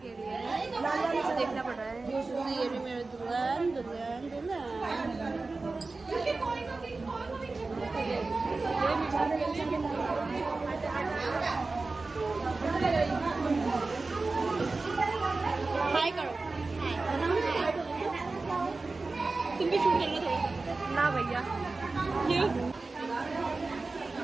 लिए, देखना पड़ रहा है। ये भी मेरे दुल्हन दुल्हन दुल्हन। हाय करो। तुम भी शूट करना थोड़ा ना भैया। क्यों?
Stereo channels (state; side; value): quieter; left; 3.6 dB